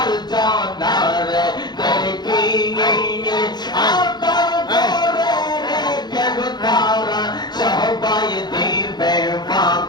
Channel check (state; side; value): late; right; 0.21 ms